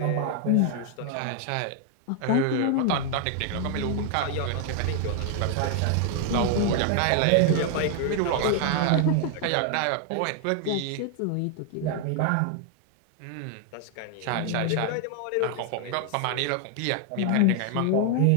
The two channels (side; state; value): both; different; correlation 0.00